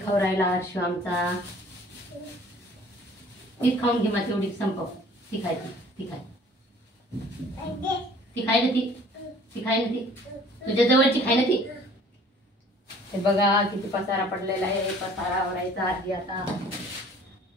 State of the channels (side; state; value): both; normal; correlation 0.52